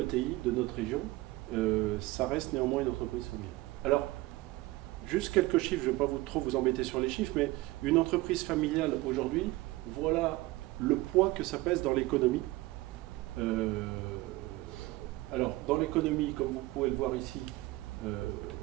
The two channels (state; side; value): quieter; left; 19.7 dB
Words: de notre région, ça reste néanmoins une entreprise familiale. Alors, juste quelques chiffres, je ne vais pas trop vous embêter sur les chiffres, mais une entreprise familiale aujourd'hui, voilà le poids que ça pèse dans l'économie. Alors, dans l'économie, comme vous pouvez le voir ici, si